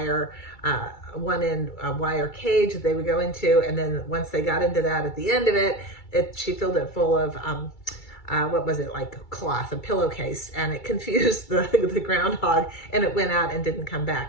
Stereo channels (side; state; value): right; late; 2.3 ms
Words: a wire cage that they would go into. And then once they got into that, at the end of it, she filled it full of, what was it, like cloth, a pillowcase, and it confused the groundhog, and it went out and didn't come